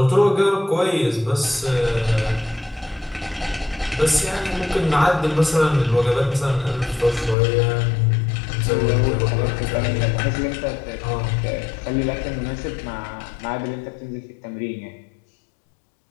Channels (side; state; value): right; drops out; at 7.4 s